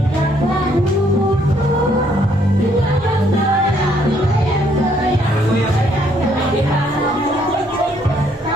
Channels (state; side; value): normal; both; correlation 0.68